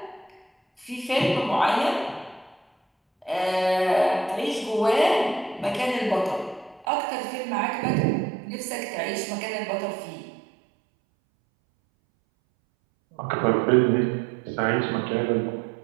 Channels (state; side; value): drops out; left; at 6.9 s